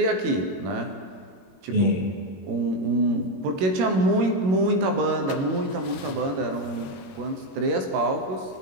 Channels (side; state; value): left; late; 22 ms